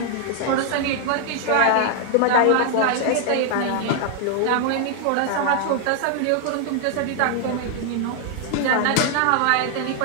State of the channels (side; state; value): both; different; correlation 0.00